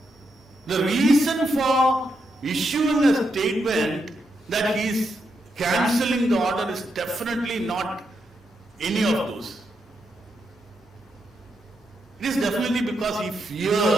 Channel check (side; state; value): both; normal; correlation 0.82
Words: The reason for issuing a statement that he is cancelling the order is definitely not any of those. It is definitely because he